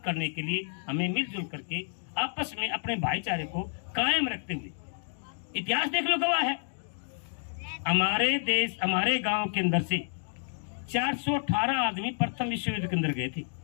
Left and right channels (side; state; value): right; silent; digital silence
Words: करने के लिए हमें मिलजुल करके आपस में अपने भाईचारे को कायम रखते हुए, इतिहास देख लो गवाह है, हमारे देश, हमारे गांव के अंदर से 418 आदमी प्रथम विश्व युद्ध के अंदर गए थे